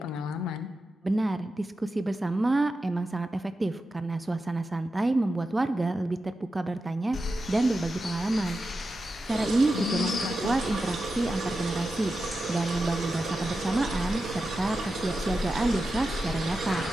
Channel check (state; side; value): normal; both; correlation 0.91